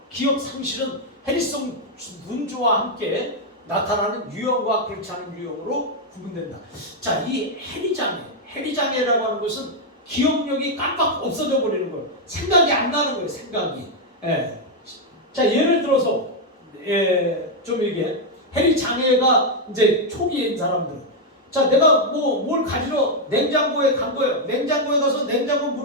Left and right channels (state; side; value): normal; both; correlation 0.00